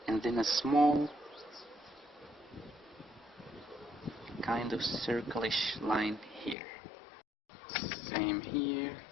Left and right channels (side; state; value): right; drops out; at 6.6 s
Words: and then a small kind of circle-ish line here. Same here.